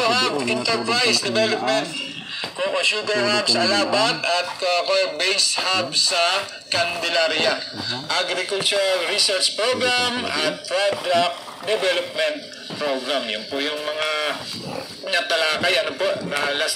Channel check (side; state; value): both; identical; correlation 1.00